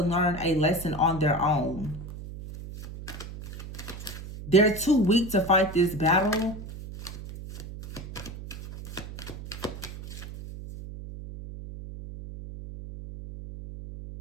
learn a lesson on their own. They're too weak to fight this battle.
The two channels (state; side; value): noise; right; hum, 11 dB below the sound